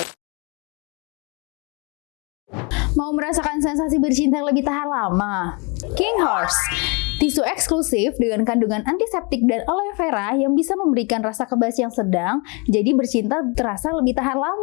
Mau merasakan sensasi bercinta yang lebih tahan lama? King Horse, tisu eksklusif dengan kandungan antiseptik dan aloe vera yang bisa memberikan rasa kebas yang sedang, jadi bercinta terasa lebih tahan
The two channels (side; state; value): right; quieter; 31.7 dB